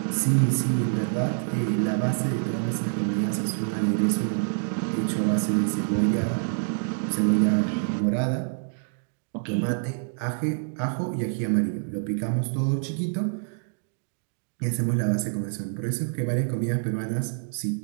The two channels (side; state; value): left; silent; digital silence